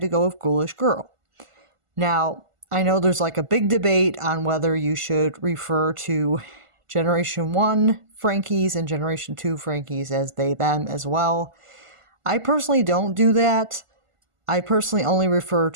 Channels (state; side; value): late; left; 1.5 ms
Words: to go with Ghoulish Girl. Now, I know there's like a big debate on whether you should refer to Generation 1 Frankies and Generation 2 Frankies as they, them as well. I personally don't do that. I personally only refer